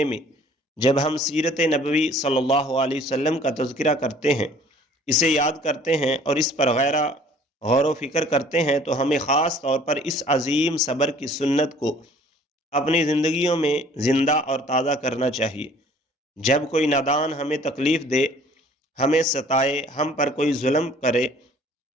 میں جب ہم سیرت نبوی صلی اللہ علیہ وسلم کا تذکرہ کرتے ہیں، اسے یاد کرتے ہیں اور اس پر غور و فکر کرتے ہیں، تو ہمیں خاص طور پر اس عظیم صبر کی سنت کو اپنی زندگیوں میں زندہ اور تازہ کرنا چاہیے۔ جب کوئی نادان ہمیں تکلیف دے، ہمیں ستائے، ہم پر کوئی ظلم کرے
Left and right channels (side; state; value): both; normal; correlation 0.54